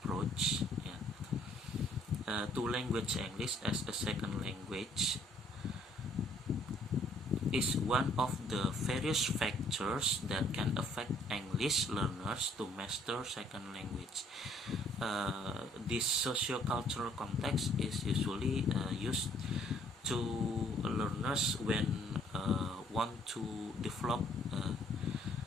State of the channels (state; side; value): normal; both; correlation 0.62